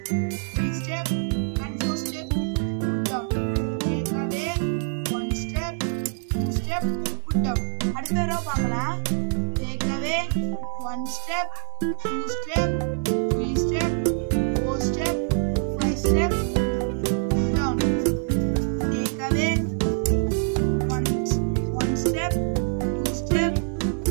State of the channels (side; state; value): left; silent; 62 dB below the other